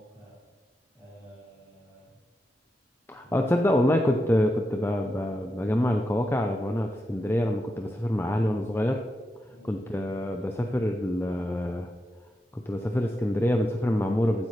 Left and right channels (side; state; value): both; normal; correlation 0.87